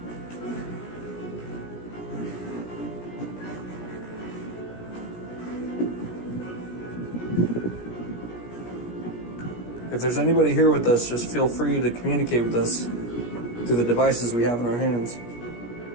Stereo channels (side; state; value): right; late; 17 ms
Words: If there's anybody here with us, just feel free to communicate with us through the devices we have in our hands.